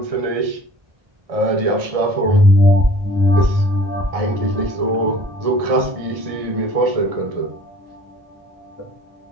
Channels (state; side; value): late; left; 1.6 ms